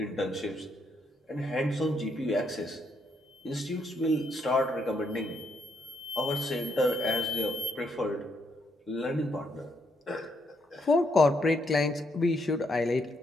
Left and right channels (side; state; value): both; normal; correlation 0.75